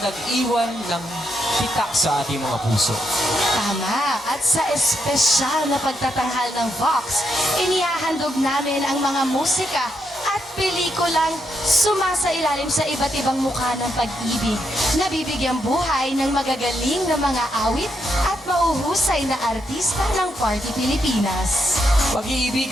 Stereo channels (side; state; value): both; normal; correlation 0.80